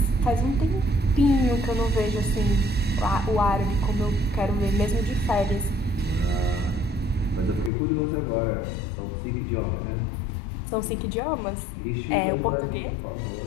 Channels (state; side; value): drops out; right; at 7.7 s